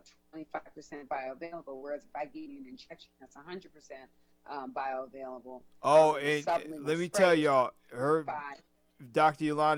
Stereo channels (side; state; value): both; identical; correlation 1.00